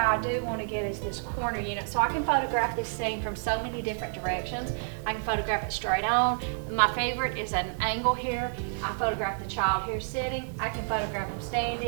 do want to get is this corner unit, so I can photograph this scene from so many different directions. I can photograph it straight on. My favorite is at an angle here. I photograph the child here sitting. I can photograph them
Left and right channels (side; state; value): left; silent; 58 dB below the other